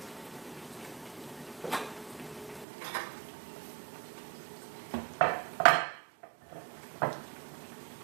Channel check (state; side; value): drops out; left; at 2.7 s